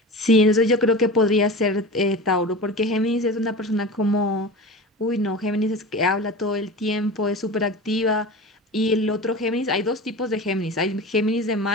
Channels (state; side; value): normal; both; correlation 0.32